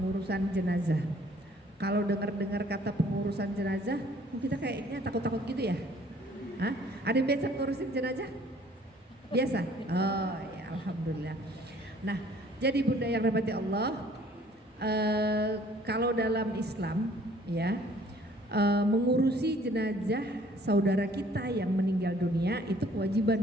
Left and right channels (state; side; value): normal; both; correlation 0.57